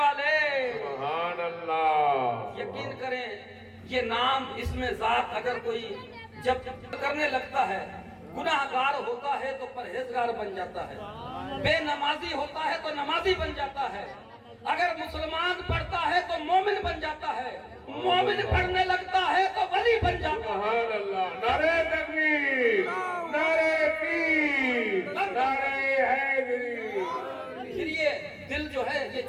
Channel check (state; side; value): identical; both; correlation 1.00